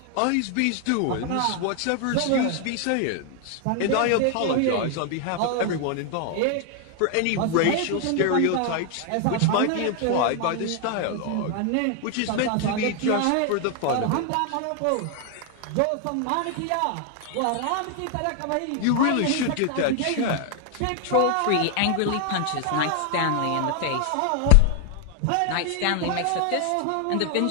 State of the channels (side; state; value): both; different; correlation 0.00